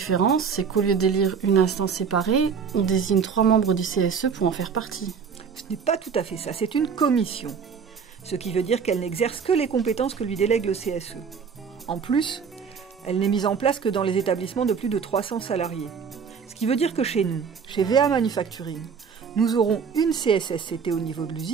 c'est qu'au lieu d'élire une instance séparée, on désigne 3 membres du CSE pour en faire partie. Ce n'est pas tout à fait ça, c'est une commission. Ce qui veut dire qu'elle n'exerce que les compétences que lui délègue le CSE. En plus, elle n'est mise en place que dans les établissements de plus de 300 salariés. Ce qui veut dire que chez nous, chez VA Manufacturing, nous aurons une CSSCT au niveau de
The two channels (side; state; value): left; quieter; 6.4 dB